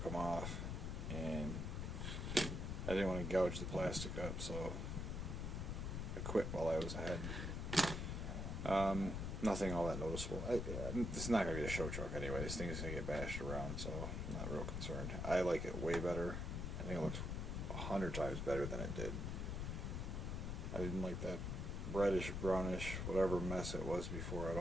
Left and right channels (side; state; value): left; noise; rumble, 2 dB below the sound